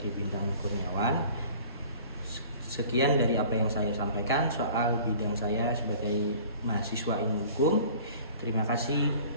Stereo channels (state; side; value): inverted; both; correlation -0.47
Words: Bintang Kurniawan. Sekian dari apa yang saya sampaikan soal bidang saya sebagai mahasiswa ilmu hukum. Terima kasih